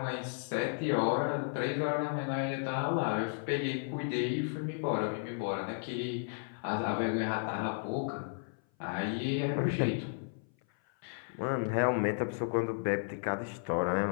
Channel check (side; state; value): right; silent; 55 dB below the other